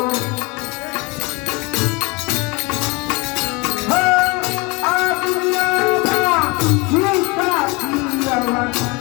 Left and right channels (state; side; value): quieter; right; 26.4 dB